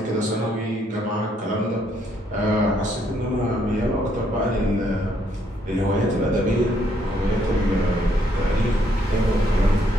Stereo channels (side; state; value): both; normal; correlation 0.71